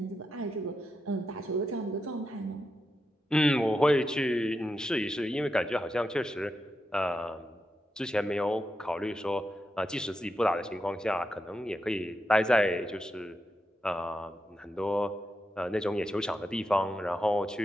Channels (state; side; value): normal; both; correlation 0.86